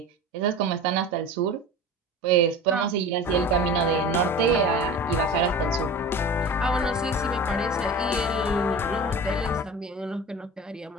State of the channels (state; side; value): normal; both; correlation 0.34